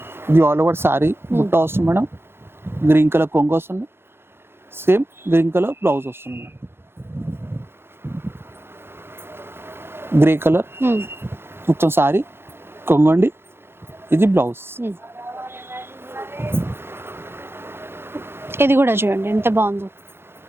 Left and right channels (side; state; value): left; late; 0.11 ms